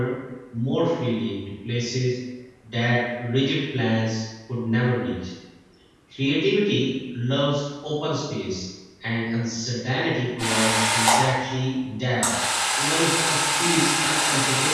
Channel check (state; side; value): identical; both; correlation 1.00